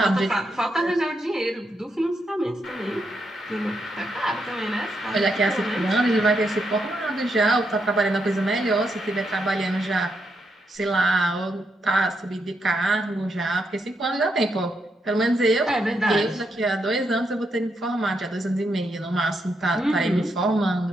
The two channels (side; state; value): both; normal; correlation 0.81